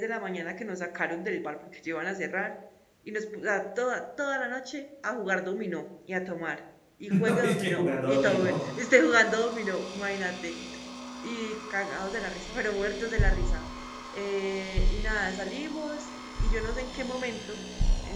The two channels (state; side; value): identical; both; correlation 1.00